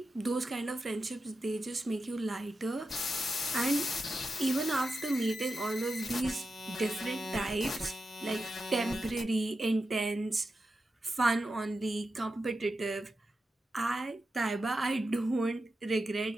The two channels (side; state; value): both; normal; correlation 0.90